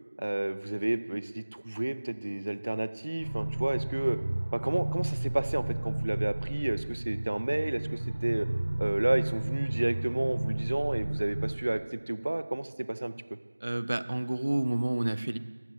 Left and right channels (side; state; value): both; inverted; correlation -1.00